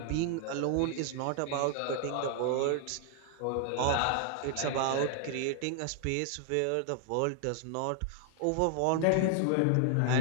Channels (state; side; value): different; both; correlation 0.00